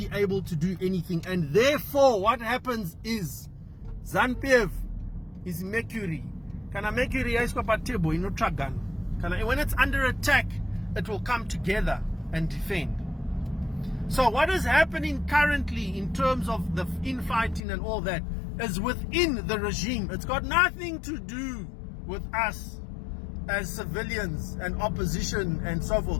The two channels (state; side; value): drops out; right; at 17.6 s